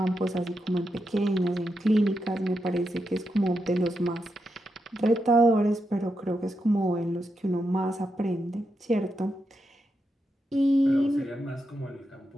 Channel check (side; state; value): both; normal; correlation 0.85